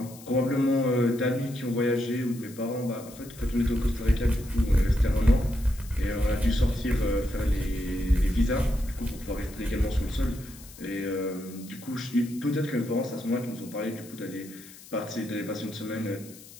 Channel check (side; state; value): left; noise; hiss, 19 dB below the sound